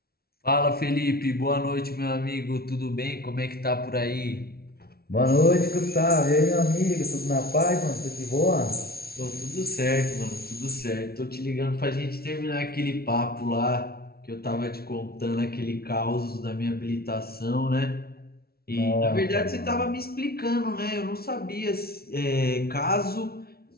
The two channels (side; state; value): right; late; 0.44 ms